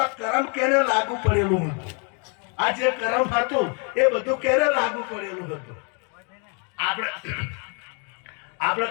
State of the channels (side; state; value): right; quieter; 37.9 dB